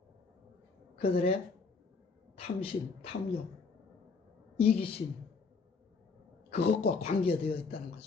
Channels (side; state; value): right; quieter; 4.7 dB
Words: 그들의 탐심, 탐욕, 이기심, 그것과 관계되어 있다는